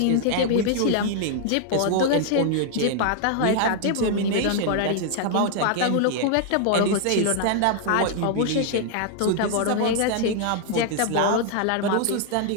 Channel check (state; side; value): different; both; correlation 0.00